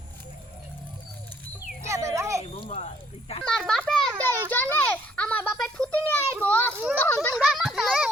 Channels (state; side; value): normal; both; correlation 0.65